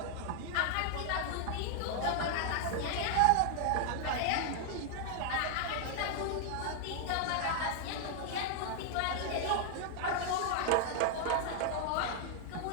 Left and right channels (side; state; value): both; different; correlation 0.00